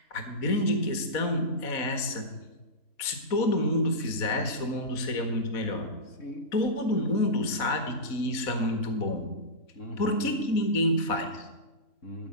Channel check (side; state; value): right; late; 4.1 ms